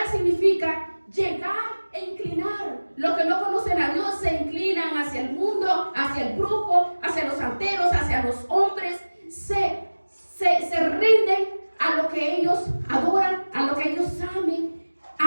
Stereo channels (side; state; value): both; inverted; correlation -1.00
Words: significa llegar e inclinar. Los que no conocen a Dios se inclinan hacia el mundo, hacia el brujo, hacia los santeros, hacia los hombres. Se rinden a lo que ellos adoran, a lo que ellos amen,